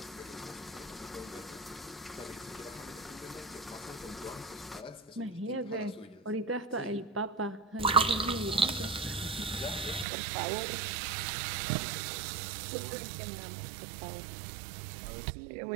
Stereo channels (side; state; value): left; drops out; at 10.1 s